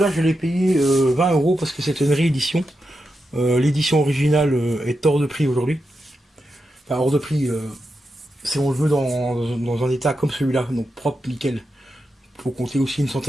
je l'ai payé 20 € parce que c'est une réédition. L'édition originale est hors de prix aujourd'hui. Enfin hors de prix, si on le veut dans un état comme celui-là, donc propre, nickel. Faut compter aussi une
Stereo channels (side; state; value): both; normal; correlation 0.87